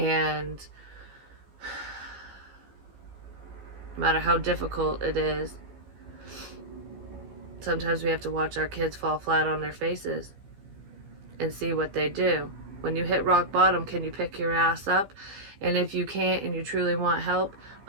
no matter how difficult it is, sometimes we have to watch our kids fall flat on their faces and see what they do. When you hit rock bottom, can you pick your ass up? And if you can't and you truly want help,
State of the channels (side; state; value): left; late; 15 ms